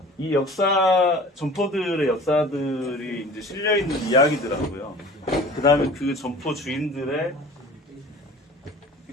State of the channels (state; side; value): normal; both; correlation 0.43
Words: 이 역사, 점포들의 역사들이 이제 실려있는 이야기들하고요. 그 다음에 그 점포 주인들의